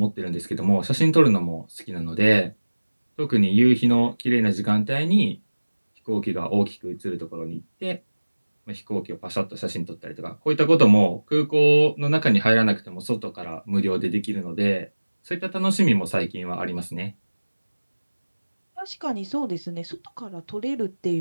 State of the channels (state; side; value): inverted; both; correlation -1.00